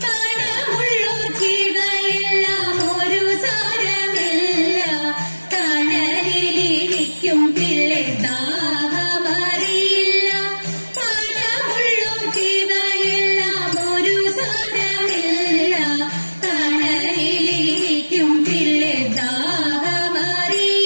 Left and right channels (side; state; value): both; inverted; correlation -1.00